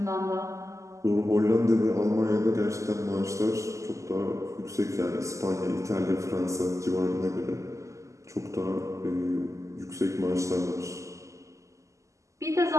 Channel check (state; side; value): late; left; 0.15 ms